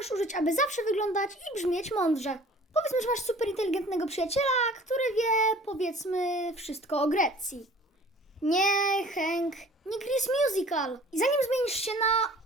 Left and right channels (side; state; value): both; normal; correlation 0.49